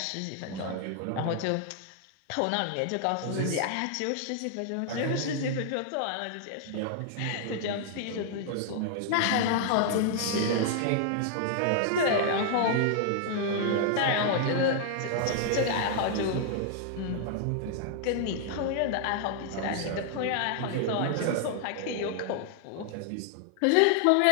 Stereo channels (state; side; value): different; both; correlation 0.00